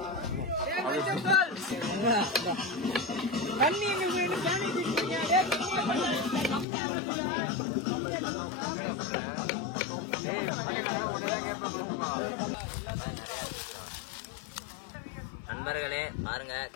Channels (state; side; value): drops out; right; at 6.7 s